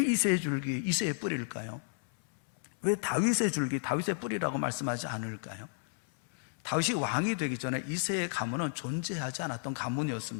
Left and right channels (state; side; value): silent; right; 56 dB below the other